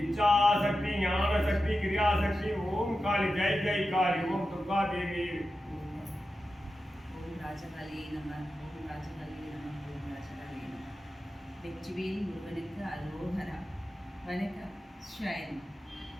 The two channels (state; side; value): normal; both; correlation 0.92